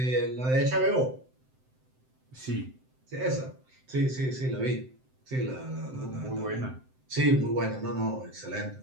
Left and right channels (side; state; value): left; late; 7.8 ms